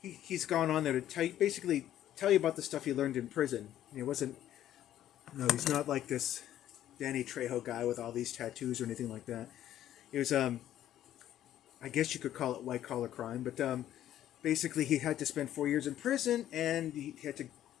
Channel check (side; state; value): right; quieter; 12.0 dB